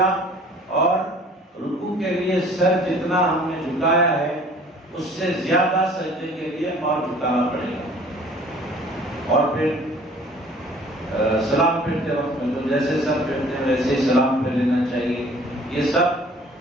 اور رکوع کے لیے سر جتنا ہم نے جھکایا ہے اس سے زیادہ سجدے کے لیے اور جھکانا پڑے گا. اور پھر سلام پھرتے وقت میں تو جیسے سب پھرتے ہیں ویسے ہی سلام پھر لینا چاہیے. یہ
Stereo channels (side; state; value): both; normal; correlation 0.51